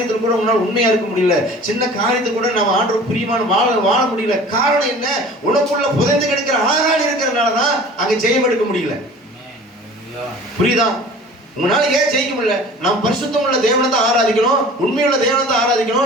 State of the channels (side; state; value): both; normal; correlation 0.44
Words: கூட உங்களால் உண்மையா இருக்க முடியல, சின்ன காரியத்துக்கு கூட நம்ம ஆண்டவர் பிரியமான வாழ முடியல. காரணம் என்ன, உனக்குள்ள புதைந்து கிடக்கிற ஆகான் இருக்கிறதுனாலதான் அங்க ஜெயம் எடுக்க முடியல. புரியுதா? உங்களால ஏன் ஜெயிக்க முடியல? நாம் பரிசுத்தம் உள்ள தேவனை தான் ஆராதிக்கணும், உண்மையுள்ள தேவனை தான்